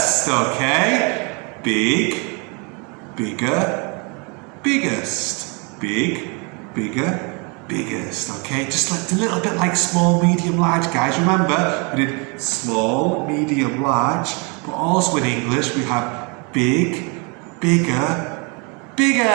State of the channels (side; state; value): left; quieter; 32.5 dB